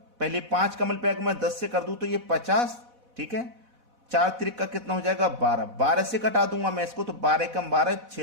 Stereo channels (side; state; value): left; late; 4.1 ms